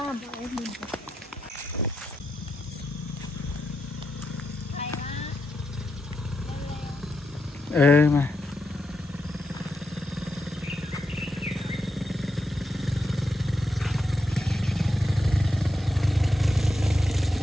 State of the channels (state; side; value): normal; both; correlation 0.85